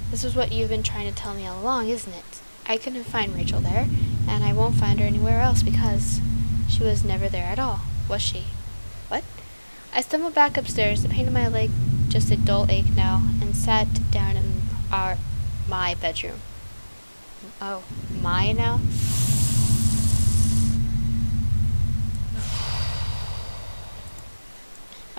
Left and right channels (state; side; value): inverted; both; correlation -1.00